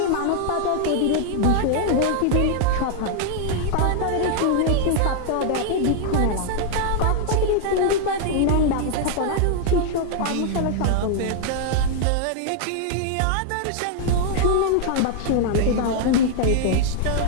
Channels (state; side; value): different; both; correlation 0.00